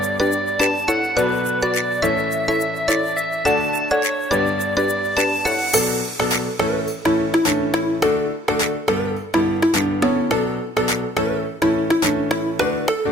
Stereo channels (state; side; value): normal; both; correlation 0.63